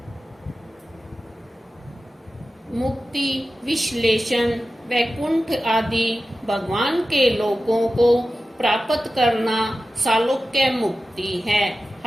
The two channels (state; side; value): normal; both; correlation 0.94